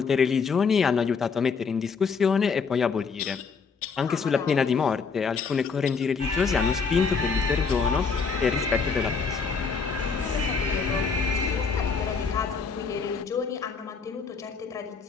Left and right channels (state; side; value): quieter; right; 5.3 dB